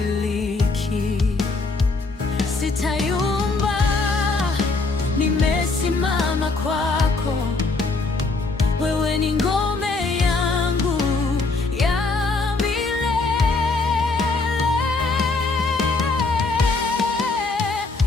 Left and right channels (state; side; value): quieter; right; 3.7 dB